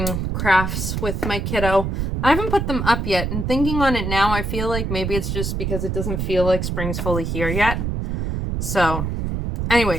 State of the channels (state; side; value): noise; right; rumble, 2 dB below the sound